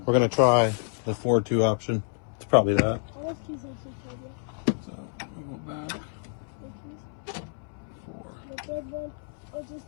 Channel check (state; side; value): silent; right; 59 dB below the other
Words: We're gonna try the 4-2 option. It's probably that. So we'll go back. 4. The third one, or just